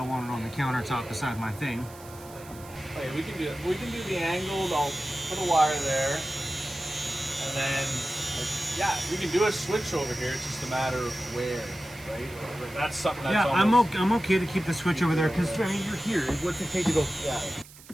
want it on the countertop beside my thing. Okay, we can do the angled. I'll put a wire there, and then yeah, we can do a switch over here. It's just a matter of where, right? That's something that's I'm okay to keep the switch over there because I mean you're here. What's it take to go? Yeah.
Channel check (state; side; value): noise; right; hiss, 20 dB below the sound